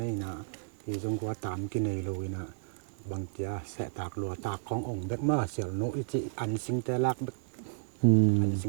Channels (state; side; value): silent; left; 56 dB below the other